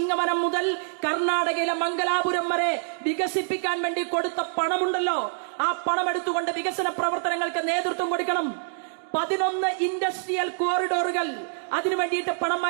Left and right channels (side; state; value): left; silent; digital silence